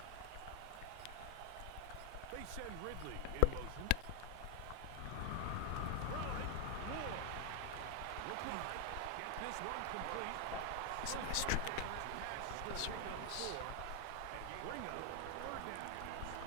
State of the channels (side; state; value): both; different; correlation 0.00